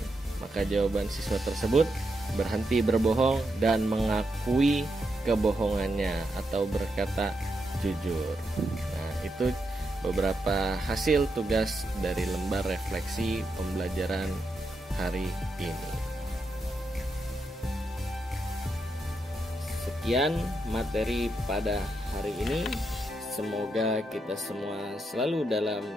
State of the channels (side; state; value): both; normal; correlation 0.83